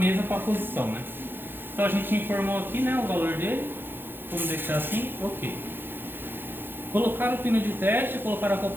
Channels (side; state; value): left; late; 0.10 ms